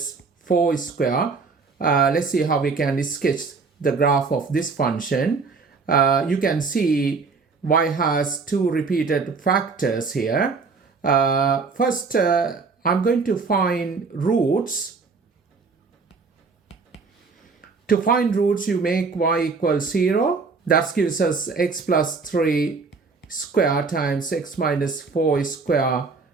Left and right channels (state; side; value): quieter; left; 4.6 dB